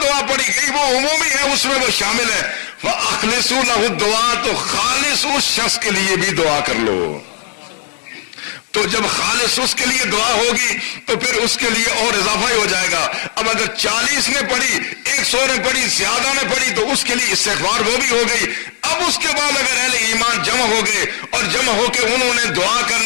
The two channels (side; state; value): right; quieter; 39.6 dB